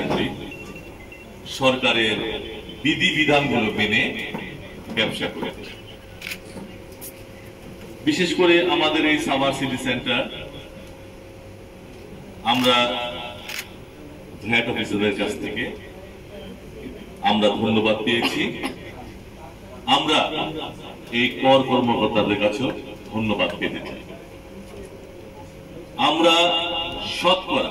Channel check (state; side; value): identical; both; correlation 1.00